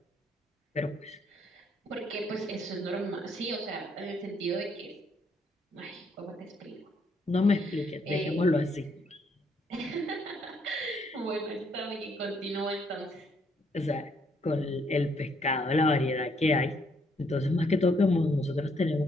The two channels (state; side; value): normal; both; correlation 0.71